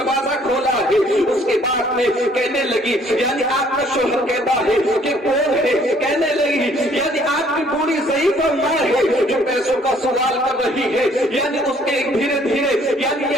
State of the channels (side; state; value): both; normal; correlation 0.61